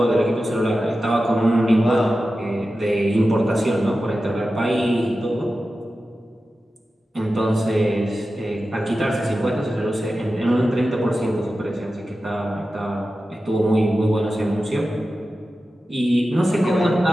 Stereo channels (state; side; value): normal; both; correlation 0.93